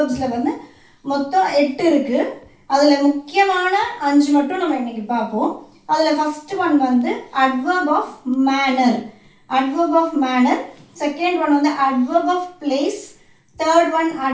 மொத்தம் 8 இருக்குது. அதில் முக்கியமான 5 மட்டும் நம்ம இன்றைக்கி பார்ப்போம். அதில் first one adverb of manner. Adverb of manner. Second one adverb of place. Third one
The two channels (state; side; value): identical; both; correlation 1.00